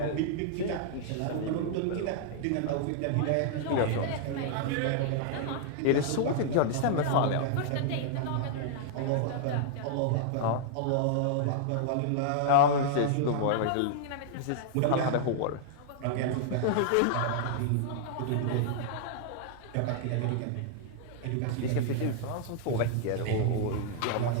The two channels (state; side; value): different; both; correlation -0.01